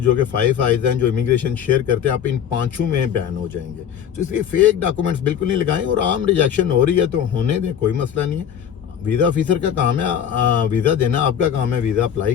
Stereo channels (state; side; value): quieter; right; 8.8 dB